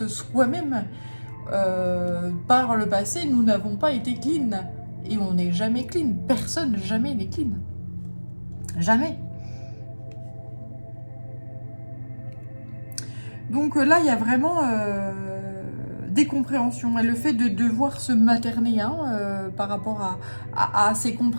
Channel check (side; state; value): both; inverted; correlation -1.00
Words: soi-même, par le passé, nous n'avons pas été clean. Et on n'est jamais clean. Personne jamais n'est clean. Jamais. Donc là, il y a vraiment des compréhensions. Et le fait de devoir se materner hein, par rapport à ces